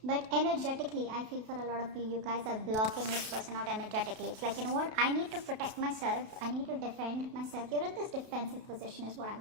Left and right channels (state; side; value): late; left; 32 ms